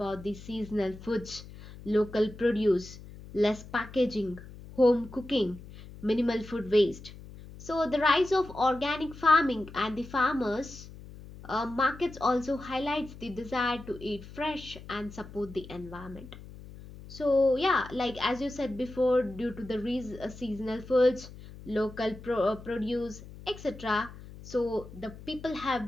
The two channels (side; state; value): left; noise; hum, 16 dB below the sound